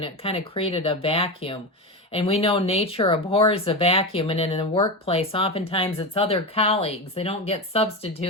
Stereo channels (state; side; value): normal; both; correlation 0.18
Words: it kind of created a vacuum. And we know nature abhors a vacuum, and in the workplace, oftentimes it's other colleagues. They don't get